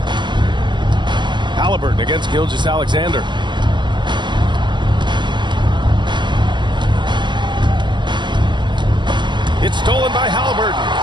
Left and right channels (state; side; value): late; left; 0.22 ms